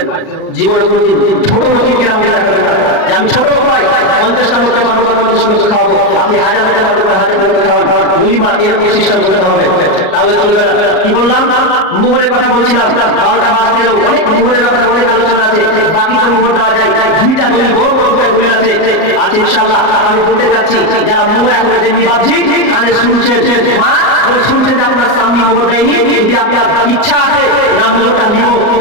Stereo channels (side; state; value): right; late; 38 ms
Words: জীবনে কোনোদিন ছোট লোকের কিরাম দেখাবেন না যে আমি ছোট লোক হয় 50টা লোককে পারবো 50 লোককে খাওয়াবো, আপনি 1000 লোককে পারবো 1000 লোককে খাওয়ান বলিমা এর সিস্টেম করতে হবে, তাহলে চলবে না। কি বললাম? মোহরের কথা বলছিলাম, 12টা বাজতে এলো, অনেক মোহরের ব্যাপারে অনেক আলোচনা আছে, বাকি তো মোহর দেওয়া যায়, 2টা দলিল বড় বড় করে দলিল আছে ইনশাআল্লাহ। আমি বলতে চাচ্ছি যারা মোহর এখন দেননি বাপজি কানে শুনছেন, মা শুনছেন যে আপনার স্বামী মোহর দেয়নি, যদি আপনার ইচ্ছা আছে না মোহরটা নিব